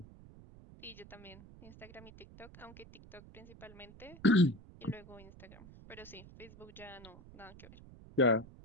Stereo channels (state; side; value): noise; right; rumble, 19 dB below the sound